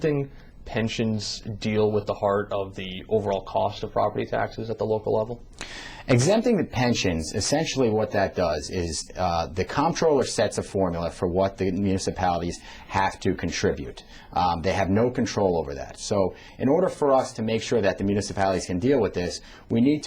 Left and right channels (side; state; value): both; identical; correlation 1.00